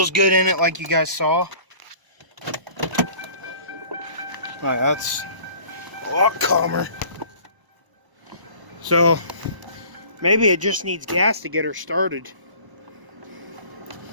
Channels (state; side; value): late; left; 1.0 ms